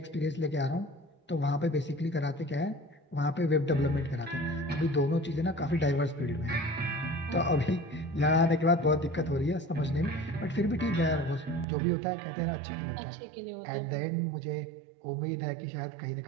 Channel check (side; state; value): left; drops out; at 11.7 s